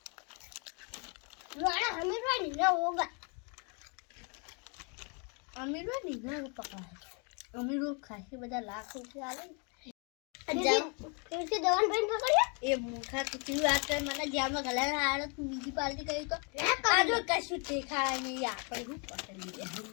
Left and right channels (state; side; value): quieter; right; 35.1 dB